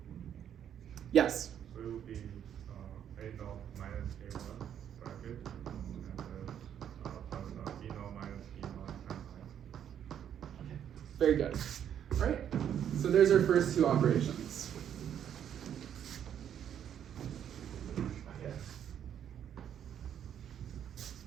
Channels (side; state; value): left; quieter; 9.4 dB